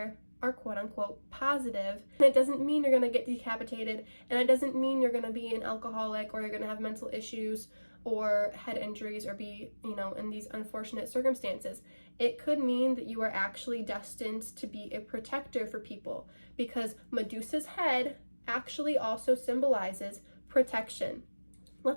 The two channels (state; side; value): inverted; both; correlation -1.00